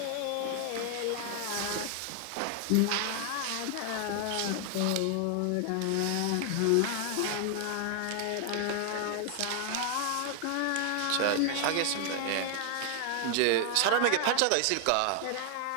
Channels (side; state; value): both; different; correlation 0.00